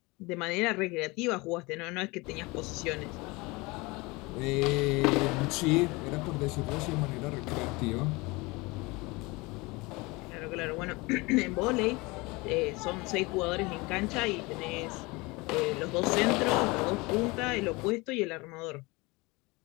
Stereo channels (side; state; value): right; quieter; 24.5 dB